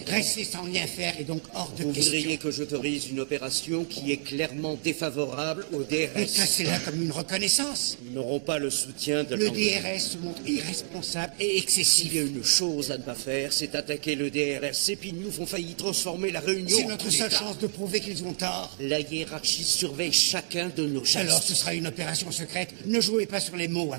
Rester sans rien faire est donc hors de Vous question. voudriez que j'autorise une opération qui est clairement défavorable au DRS. Et classez-la comme une reconnaissance. Nous n'aurons pas le soutien de Le l'Angleterre. DRS se montre irresponsable et excessif. Il y a une chose à ne pas faire, c'est attaquer le DRS. Ces pignoufs ont failli transformer la Réunion C'est en notre coup seule d'État. chance de prouver qu'ils ont tort. La hiérarchie surveille chacun de nos gestes. Alors ce sera une opération secrète. Ne jouez pas sur les mots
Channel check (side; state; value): left; silent; digital silence